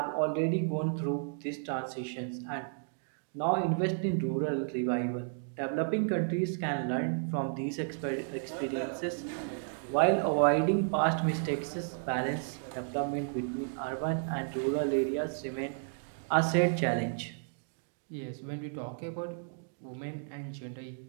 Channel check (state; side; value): silent; left; digital silence